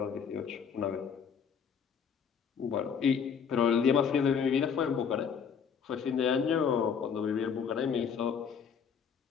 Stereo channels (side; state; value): right; quieter; 6.9 dB